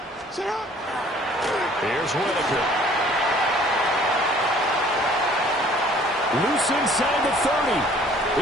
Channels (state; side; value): normal; both; correlation 0.55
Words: Sit up. Here's Whitaker. Loose inside the 30.